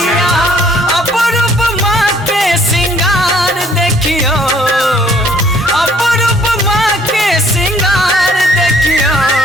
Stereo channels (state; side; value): normal; both; correlation 0.61